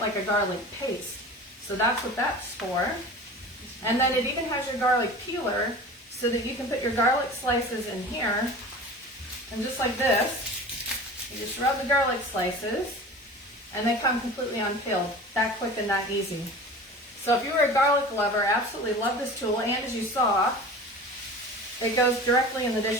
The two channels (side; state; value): both; normal; correlation 0.37